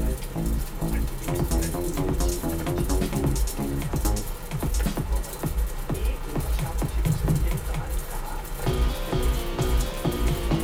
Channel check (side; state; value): both; identical; correlation 1.00